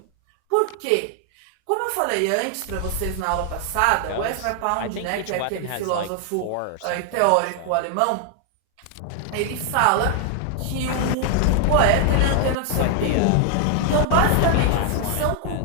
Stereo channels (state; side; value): different; both; correlation 0.00